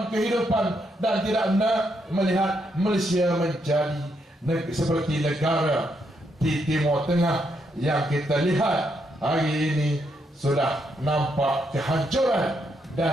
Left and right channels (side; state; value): both; normal; correlation 0.78